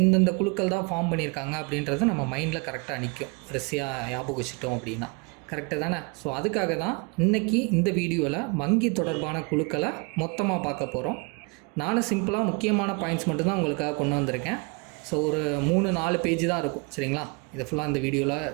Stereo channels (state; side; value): quieter; left; 31.1 dB